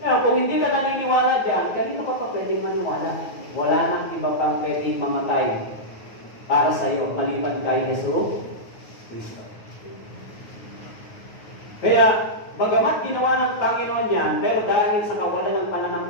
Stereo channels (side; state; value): right; late; 9.4 ms